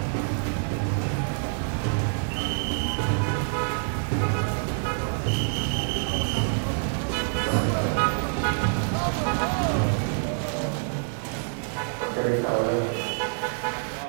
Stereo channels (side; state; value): left; silent; digital silence